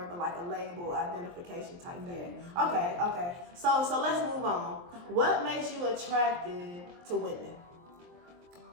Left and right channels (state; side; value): late; left; 23 ms